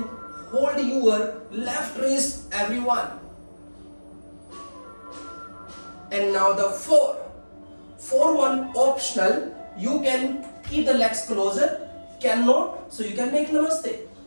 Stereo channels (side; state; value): both; inverted; correlation -1.00